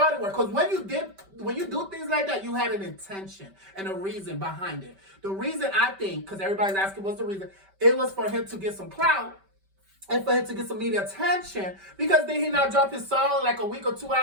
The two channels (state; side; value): late; left; 5.2 ms